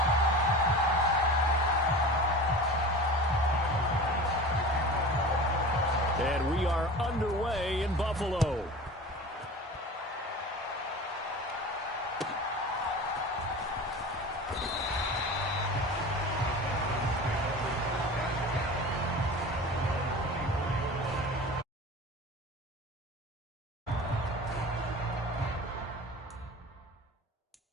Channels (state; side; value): normal; both; correlation 0.35